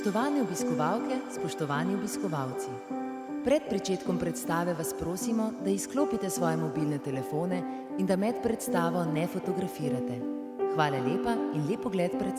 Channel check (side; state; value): both; identical; correlation 1.00